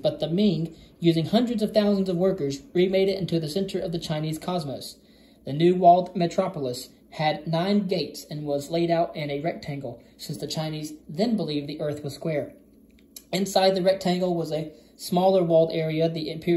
the Ming, using hundreds of thousands of workers, remade it into the center of the Chinese cosmos. The new walled metropolis had 9 gates and was laid out in a rectangle, since the Chinese then believed the earth was square. Inside the rectangle was a smaller walled area, the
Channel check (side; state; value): both; identical; correlation 1.00